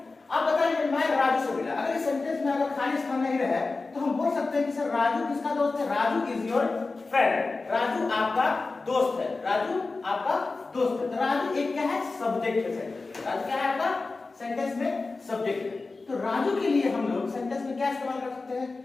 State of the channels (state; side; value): quieter; right; 3.7 dB